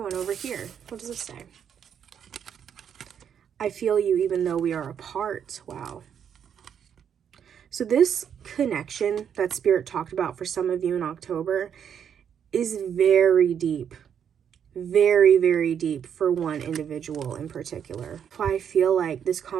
one over here. What does this say? I feel you even though we are apart. Wow. So this connection that Spirit talked about for some of you in October is very deep. Very, very deep for one individual in particular. I feel like this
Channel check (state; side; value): quieter; left; 8.3 dB